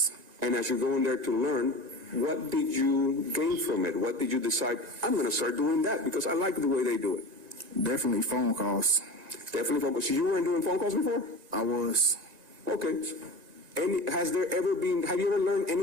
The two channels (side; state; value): left; late; 2.0 ms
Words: And as you're going there to learn, what did you gain from it? What did you decide, I'm going to start doing that because I like the way they do it? Definitely phone calls. Definitely phone calls. So you weren't doing phone calls before? I was. Okay. Have you ever learned